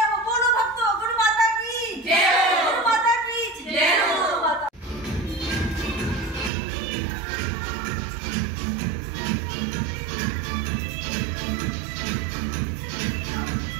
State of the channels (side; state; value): left; drops out; at 6.5 s